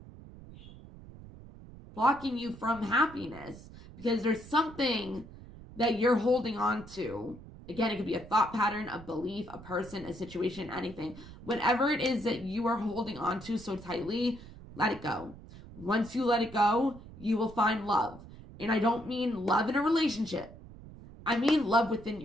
blocking you from happiness. Because there's something that you're holding on to. Again, it could be a thought pattern, a belief, a person, a situation, anything. Whatever it is that you are holding on to so tightly, let it go. Once you let it go, you will find love. And I don't mean love in a relationship. I mean love within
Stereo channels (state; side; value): noise; right; rumble, 17 dB below the sound